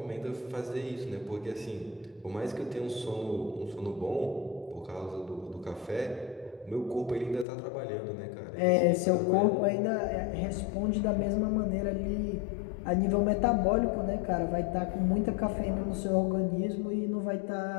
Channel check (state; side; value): drops out; right; at 7.5 s